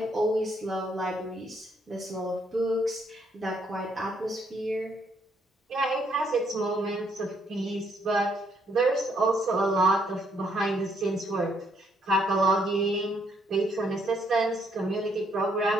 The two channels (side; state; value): both; normal; correlation 0.71